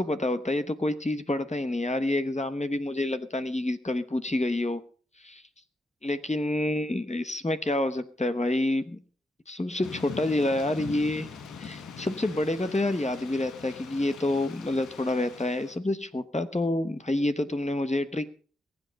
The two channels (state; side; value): normal; both; correlation 0.81